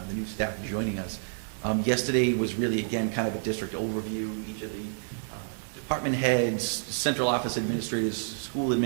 new staff joining us. Yesterday was really, again, kind of a district overview. Each of the department heads, central office administrators, school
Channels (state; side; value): silent; left; digital silence